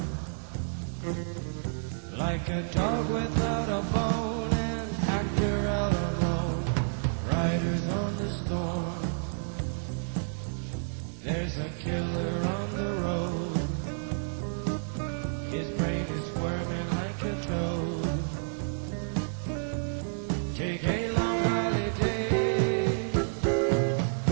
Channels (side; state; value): left; silent; digital silence